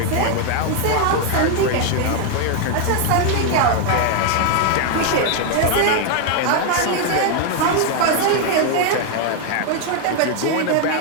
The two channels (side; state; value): both; different; correlation 0.00